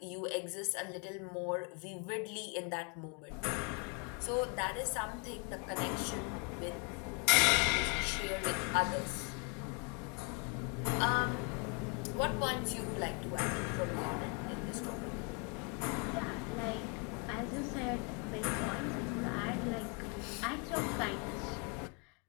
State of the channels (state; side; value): quieter; right; 35.1 dB